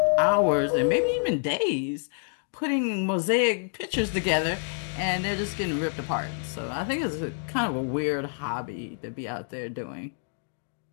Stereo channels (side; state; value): right; silent; digital silence